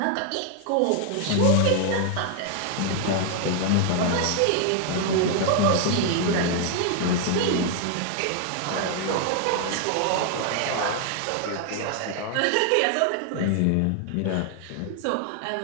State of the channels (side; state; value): both; different; correlation 0.00